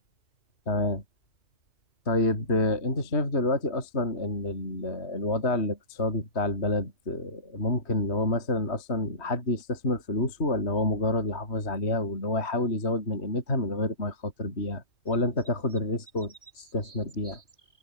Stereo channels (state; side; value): late; right; 3.1 ms